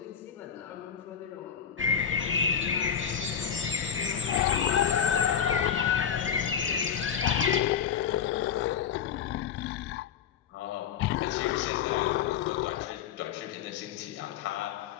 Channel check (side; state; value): right; quieter; 8.0 dB